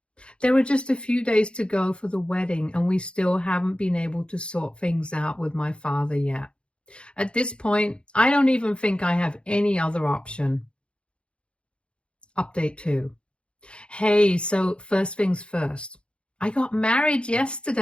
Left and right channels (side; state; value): right; late; 0.056 ms